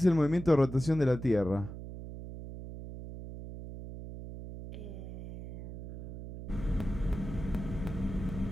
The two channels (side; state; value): right; noise; hum, 10 dB below the sound